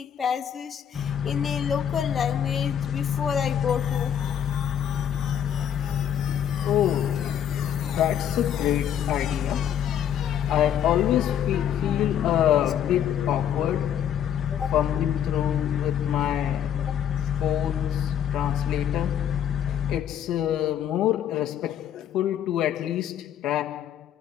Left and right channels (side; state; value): right; quieter; 9.5 dB